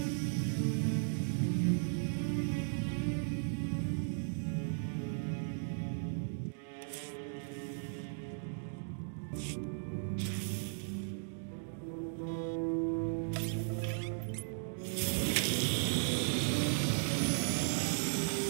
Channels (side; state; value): left; silent; digital silence